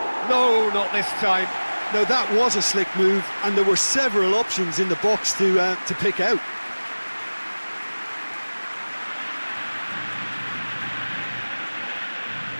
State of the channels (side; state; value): both; inverted; correlation -1.00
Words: No, not this time. Now, that was a slick move, and there were several options in the box to pick out.